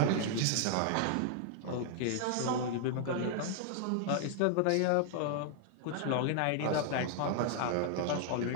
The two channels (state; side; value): different; both; correlation 0.00